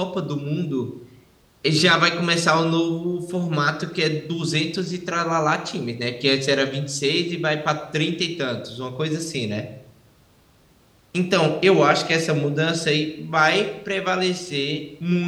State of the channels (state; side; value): identical; both; correlation 1.00